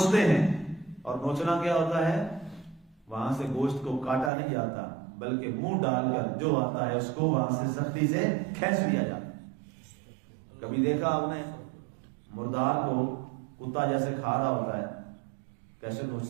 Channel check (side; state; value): left; drops out; at 4.3 s